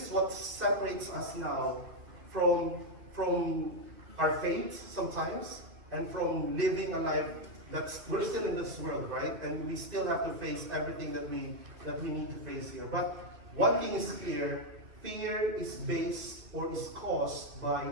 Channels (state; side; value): late; left; 2.5 ms